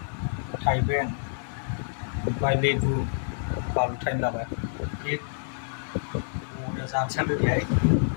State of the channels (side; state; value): right; silent; 56 dB below the other